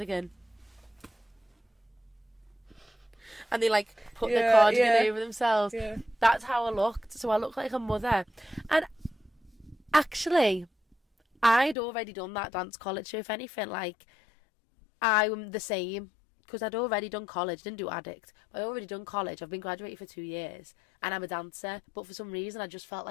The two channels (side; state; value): right; drops out; at 11.8 s